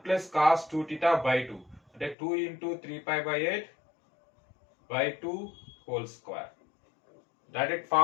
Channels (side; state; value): right; drops out; at 2.1 s